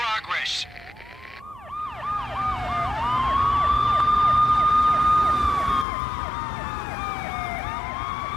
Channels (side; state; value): right; drops out; at 5.9 s